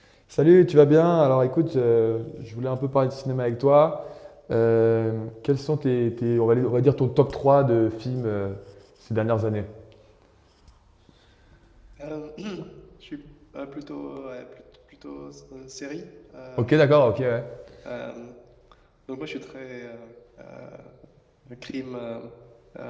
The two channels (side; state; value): both; identical; correlation 1.00